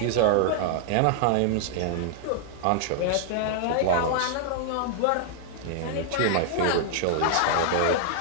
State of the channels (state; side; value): different; both; correlation -0.01